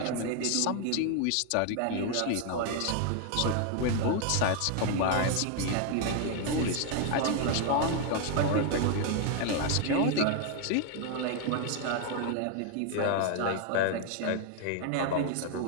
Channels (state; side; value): different; both; correlation 0.00